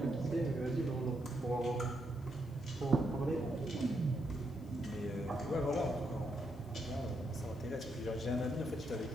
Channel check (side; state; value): left; noise; hiss, 29 dB below the sound